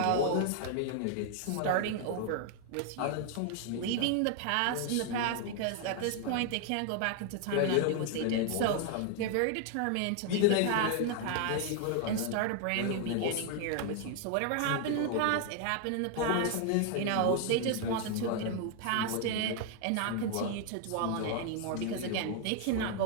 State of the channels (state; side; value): different; both; correlation 0.00